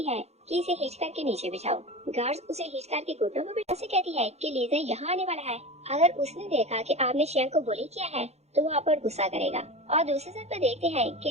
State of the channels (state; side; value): late; left; 0.31 ms